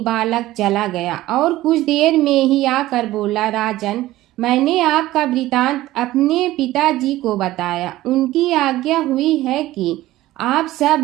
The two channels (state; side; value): quieter; left; 16.2 dB